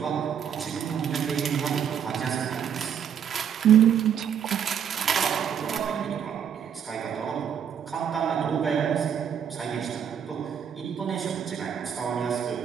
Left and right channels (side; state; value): left; quieter; 8.3 dB